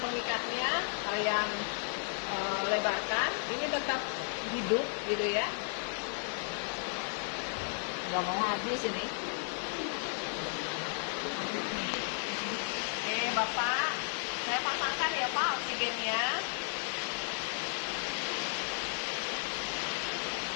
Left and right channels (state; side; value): silent; right; 55 dB below the other